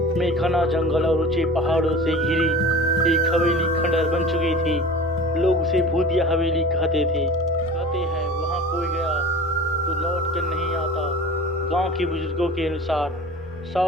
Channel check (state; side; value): normal; both; correlation 0.38